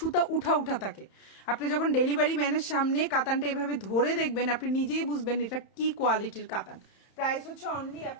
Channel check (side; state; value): right; late; 31 ms